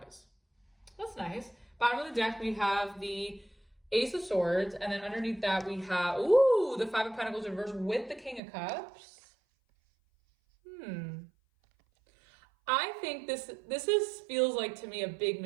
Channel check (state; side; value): drops out; left; at 8.4 s